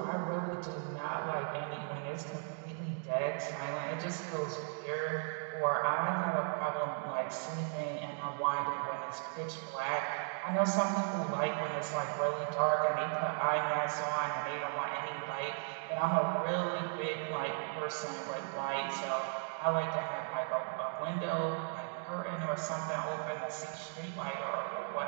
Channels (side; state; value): left; silent; 54 dB below the other